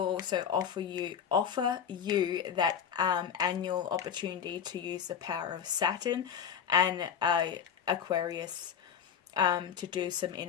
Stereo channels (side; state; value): right; quieter; 7.9 dB